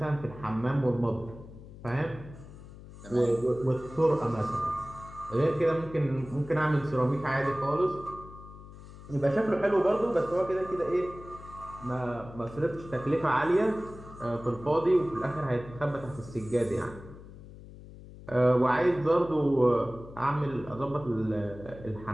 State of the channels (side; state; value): left; noise; hum, 16 dB below the sound